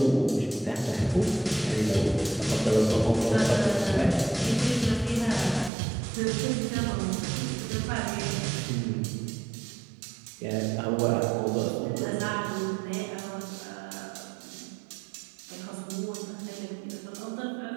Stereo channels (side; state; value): left; drops out; at 5.7 s